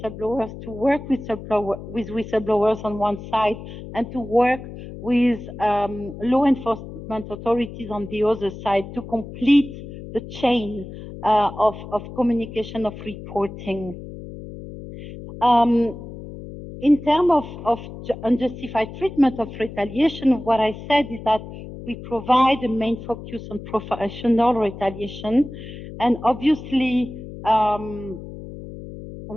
to work with whistleblowers on one side, and to work with law enforcement authorities on the other side to complete the chain of communication, of reporting. In terms of unjustified treatment of retaliation, what I said is that we provide a main focus on professional retaliation, and obviously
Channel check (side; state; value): left; noise; hum, 12 dB below the sound